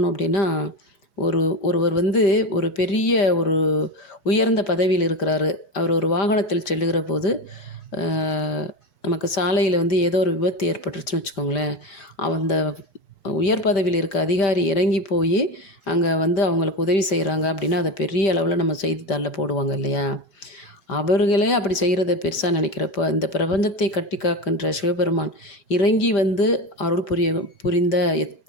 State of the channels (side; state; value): right; late; 5.1 ms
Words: அப்படின்னா, ஒருவர் வந்து ஒரு பெரிய ஒரு உயர்ந்த பதவியில் இருக்கிறாரு. அவர் ஒரு வாகனத்தில் செல்லுகிற போது நமக்கு சாலையில் வந்து ஏதோ ஒரு விபத்து ஏற்பட்டுருச்சுன்னு வச்சுக்கோங்களேன். அந்த உயர் பதவியில் இருக்க அதிகாரி இறங்கி போய் அங்கே வந்து அவங்களுக்கு உதவி செய்கிறாங்க அப்படின்னா அதை பெரிய அளவில் நம்ம செய்தித்தாளில் போடுவாங்க இல்லையா. அவர்களே அப்படி செய்கிறத பெருசாக நினைக்கிறப்போ, இந்த பிரபஞ்சத்தை கட்டி காக்கின்ற சிவபெருமான் இறங்கி வந்து அருள் புரிந்த